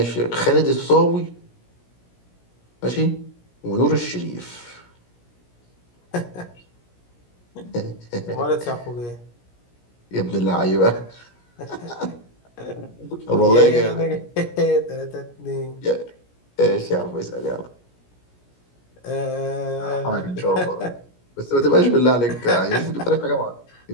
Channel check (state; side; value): late; right; 17 ms